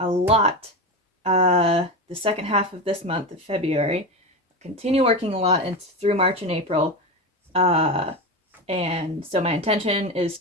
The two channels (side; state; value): both; normal; correlation 0.20